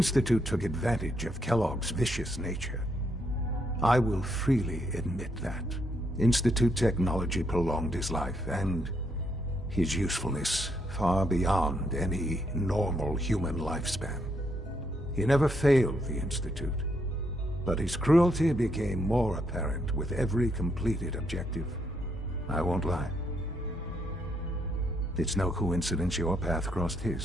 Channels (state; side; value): normal; both; correlation 0.75